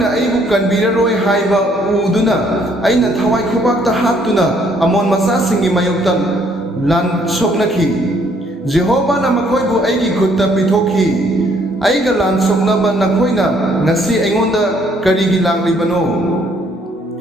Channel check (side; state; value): both; normal; correlation 0.65